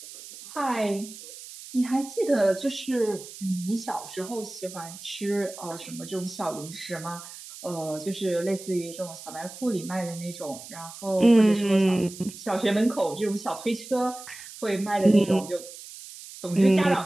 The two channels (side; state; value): right; noise; hiss, 15 dB below the sound